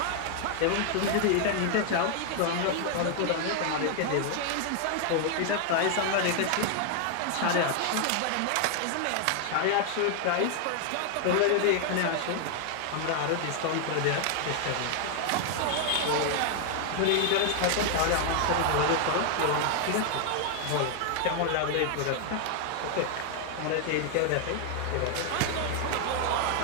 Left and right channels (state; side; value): different; both; correlation 0.00